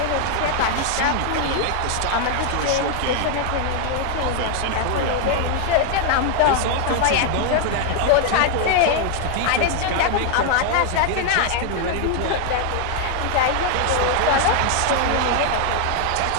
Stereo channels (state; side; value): different; both; correlation 0.00